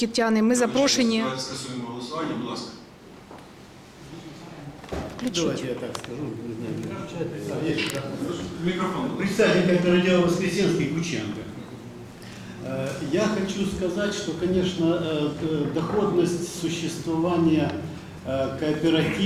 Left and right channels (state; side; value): identical; both; correlation 1.00